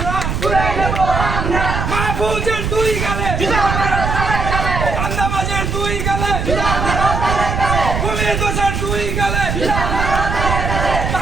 মাহফুজের দুই গালে চাঁদাবাজের দুই গালে পুলিশ দোষের দুই গালে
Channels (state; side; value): noise; right; rumble, 2 dB below the sound